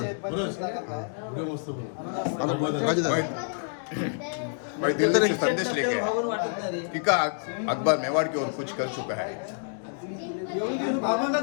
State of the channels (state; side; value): silent; right; digital silence